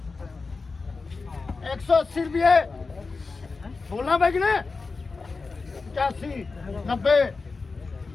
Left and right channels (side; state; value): right; quieter; 4.2 dB